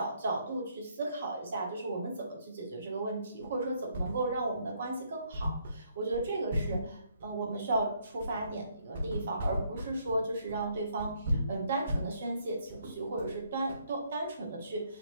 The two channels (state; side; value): inverted; both; correlation -0.70